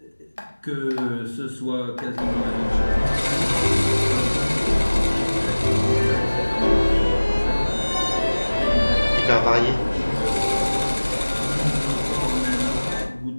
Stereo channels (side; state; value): both; inverted; correlation -1.00